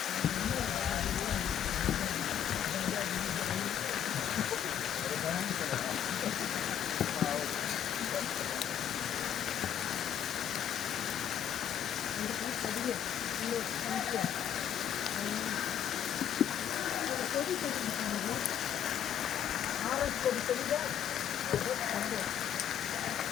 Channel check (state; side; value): quieter; right; 9.7 dB